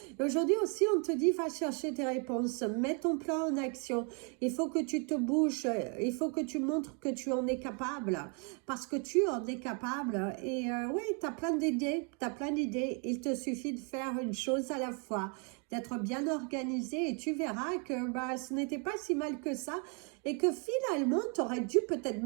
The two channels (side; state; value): left; quieter; 37.4 dB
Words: Aujourd'hui aussi, on te dit, va chercher tes réponses, mets ton plan en action. Il faut que tu te bouges, il faut que tu montres que tu en es capable, parce que tu en es capable. Et oui, tu as plein d'idées, il te suffit de faire une chose à la fois, d'être bien organisé et tu verras que bah, ce n'était pas si mal que ça et que finalement, tu aurais dû peut-être